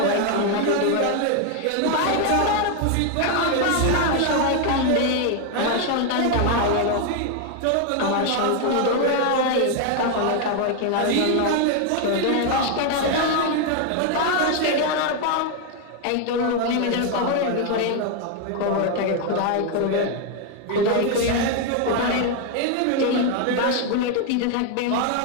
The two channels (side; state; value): both; different; correlation 0.01